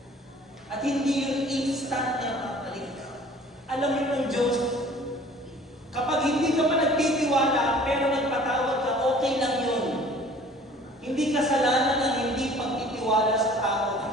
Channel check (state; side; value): normal; both; correlation 0.50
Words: At hindi yung instant na mapalik ka. Alam mo ng Diyos, kapag hindi ka pa nagtitiwala, pero nagpatawad ka, okay lang yun. Hindi kasalanan ang hindi pagtitiwala sa tao.